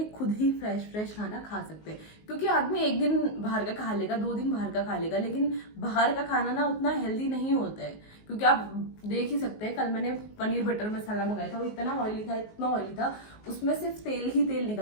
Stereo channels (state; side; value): late; right; 19 ms